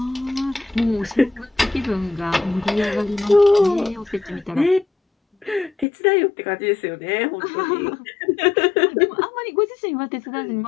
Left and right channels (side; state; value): right; drops out; at 5.9 s